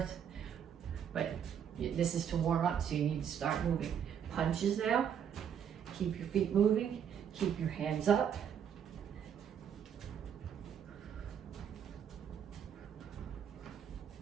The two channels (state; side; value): quieter; left; 8.4 dB